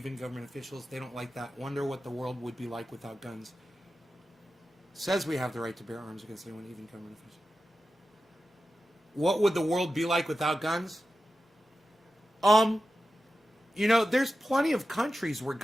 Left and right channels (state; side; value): normal; both; correlation 0.92